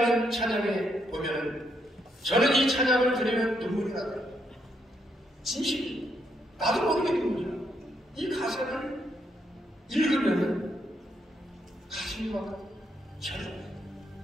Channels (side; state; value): both; normal; correlation 0.77